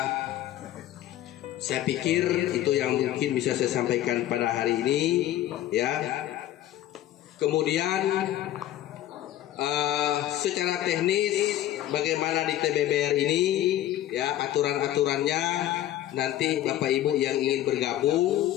saya pikir itu yang mungkin bisa saya sampaikan pada hari ini, ya. Kemudian secara teknis bagaimana di TBBR ini, ya, aturan-aturannya nanti Bapak Ibu yang ingin bergabung,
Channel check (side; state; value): right; quieter; 13.2 dB